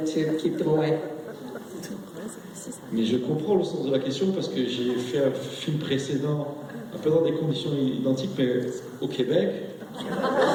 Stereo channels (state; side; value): identical; both; correlation 1.00